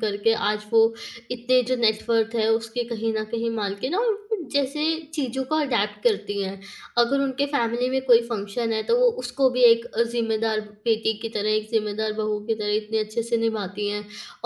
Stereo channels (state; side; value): identical; both; correlation 1.00